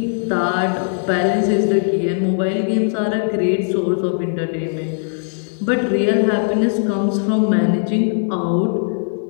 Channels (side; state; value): right; silent; digital silence